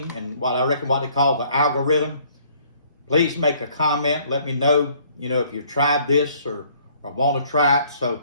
and what I reckon what they call the algorithm. Please make a comment. Let me know, you know, if you've tried this or want to try it. So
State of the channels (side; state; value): both; inverted; correlation -0.61